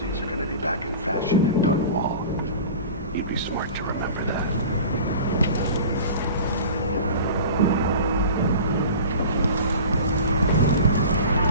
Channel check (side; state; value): both; inverted; correlation -0.38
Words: are gonna be back in fashion in Dunwall. You'd be smart to remember that.